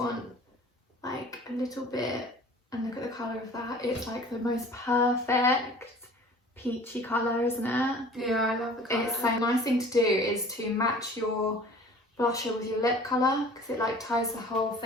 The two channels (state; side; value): normal; both; correlation 0.46